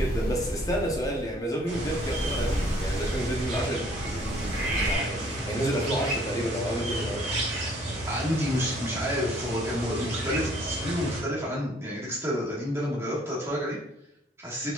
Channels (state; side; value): normal; both; correlation 0.60